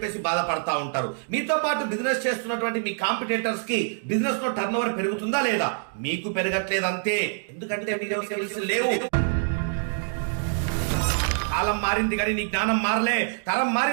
బాధపడతా ఉంటారు. మీతో పాటు బిజినెస్ చేస్తున్నటువంటి మీ కాంపిటేటర్స్ కి బిజినెస్ లో టర్న్ ఓవర్ పెరుగుతుందా లేదా? మీకు పెరగట్లేదంతే. ఎందుకంటే మీలో స్కిల్స్ లేవు. కాలం మారింది కానీ నీ జ్ఞానం మారలే, తరం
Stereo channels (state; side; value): silent; left; digital silence